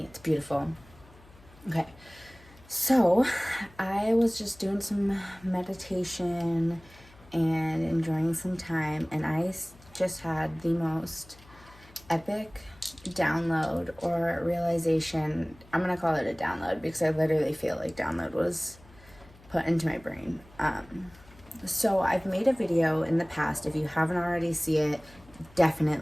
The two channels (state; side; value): noise; left; hum, 24 dB below the sound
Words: It's beautiful. Okay. So I was just doing some meditation and enjoying some time, and I just had the most epic download or realization. I'm gonna call it a download because I literally feel like download was put into my brain. So I've made a video in the past. If you haven't already seen it,